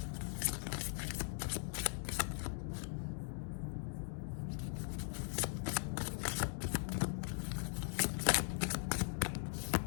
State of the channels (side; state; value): right; silent; digital silence